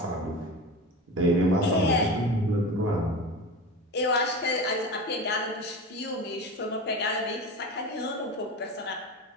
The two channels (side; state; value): both; normal; correlation 0.29